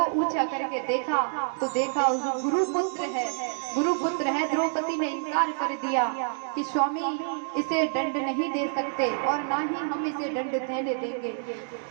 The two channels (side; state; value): left; silent; digital silence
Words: ऊंचा करके देखा तो देखा गुरुपुत्र है। द्रौपदी ने इनकार कर दिया कि स्वामी इसे दंड नहीं दे सकते और ना ही हम इसे दंड देने देंगे।